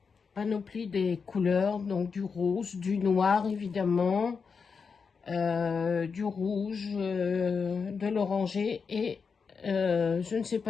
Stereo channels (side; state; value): right; quieter; 5.5 dB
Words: Panoplie des couleurs. Donc, du rose, du noir, évidemment. Du rouge, de l'oranger. Et je ne sais